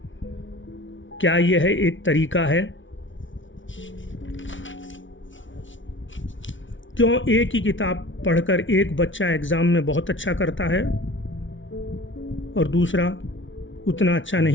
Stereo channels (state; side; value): late; right; 0.56 ms